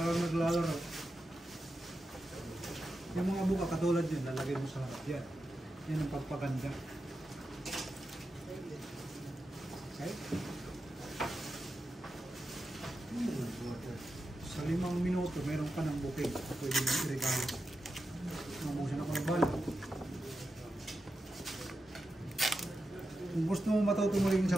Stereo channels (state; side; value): normal; both; correlation 0.89